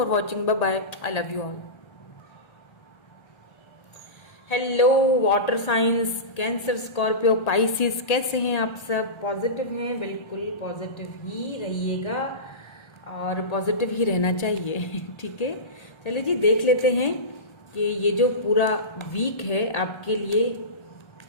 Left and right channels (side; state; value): right; late; 1.3 ms